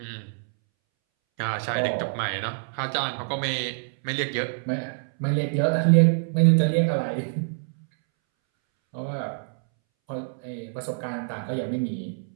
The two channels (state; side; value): silent; left; 61 dB below the other